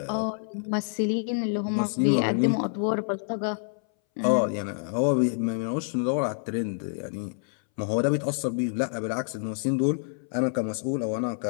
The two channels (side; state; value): right; silent; 60 dB below the other